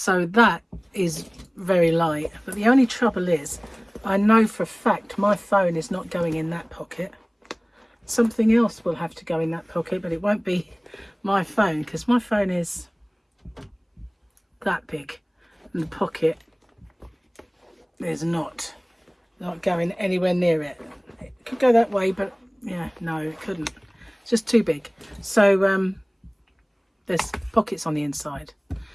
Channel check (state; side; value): identical; both; correlation 1.00